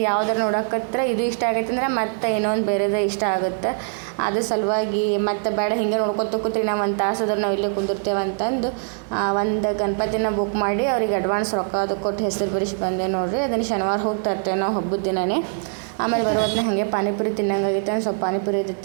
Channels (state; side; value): silent; left; 64 dB below the other